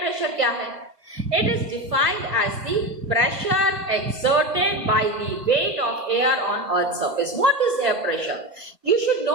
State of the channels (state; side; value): late; left; 2.2 ms